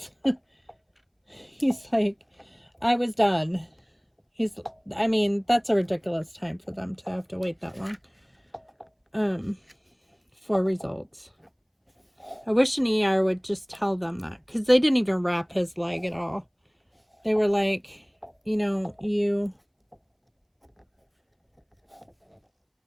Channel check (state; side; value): identical; both; correlation 1.00